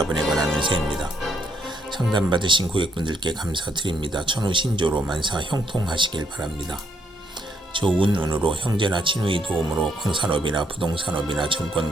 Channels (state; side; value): normal; both; correlation 0.72